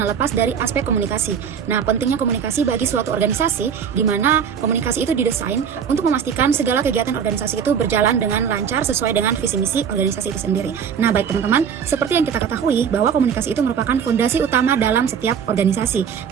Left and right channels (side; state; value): left; quieter; 7.4 dB